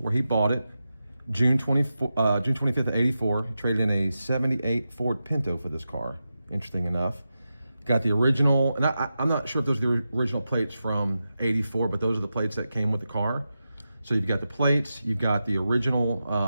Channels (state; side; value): inverted; both; correlation -0.91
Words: he bought it June 25th of 84. He traded in a 78 Ford Pinto for this car, interesting enough. Got the original, and I'm not sure if those are the original plates from 84, but those are the plates that came with the car. So you've got the plates, you've got the